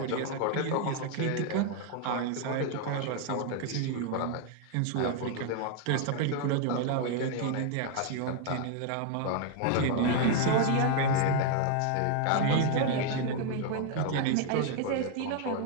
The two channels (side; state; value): both; different; correlation 0.00